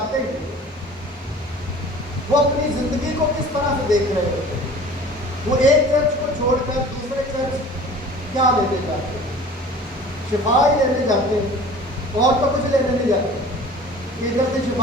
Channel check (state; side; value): normal; both; correlation 0.44